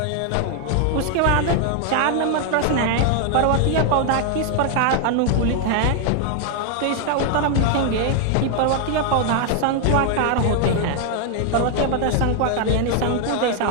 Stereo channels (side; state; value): both; different; correlation 0.00